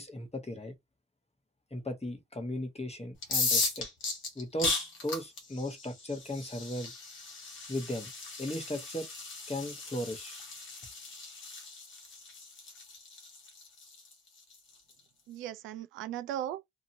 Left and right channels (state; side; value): normal; both; correlation 0.43